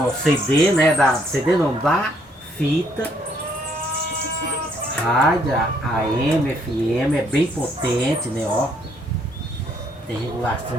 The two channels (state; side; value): normal; both; correlation 0.68